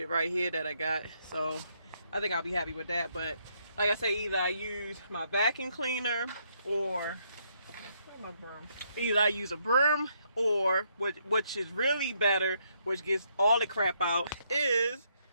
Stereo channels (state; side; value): inverted; both; correlation -0.74